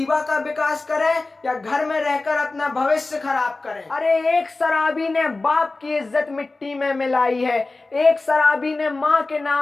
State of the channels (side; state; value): right; quieter; 3.4 dB